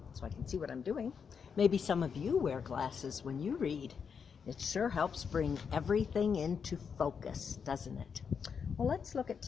so I can see what I'm doing. Maybe some of you wear glasses when you read. It sure helps bring everything into focus, doesn't it? Well, let's look at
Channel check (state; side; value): quieter; right; 6.4 dB